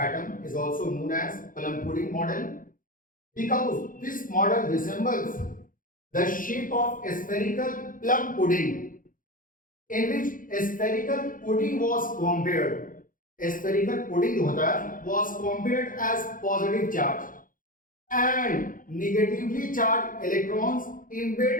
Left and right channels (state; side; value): late; right; 0.40 ms